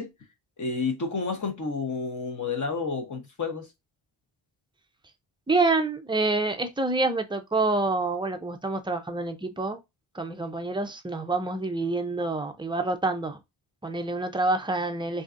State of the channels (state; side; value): normal; both; correlation 0.38